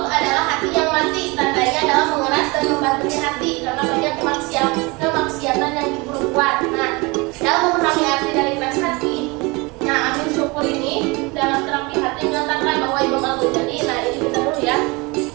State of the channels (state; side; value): quieter; left; 25.9 dB